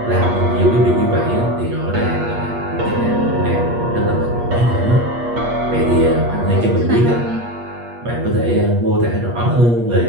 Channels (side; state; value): left; late; 8.4 ms